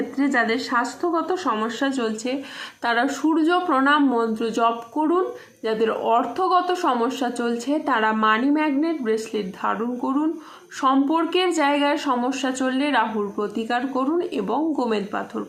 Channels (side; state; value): both; identical; correlation 1.00